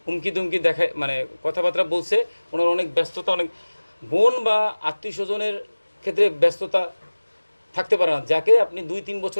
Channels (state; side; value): inverted; both; correlation -1.00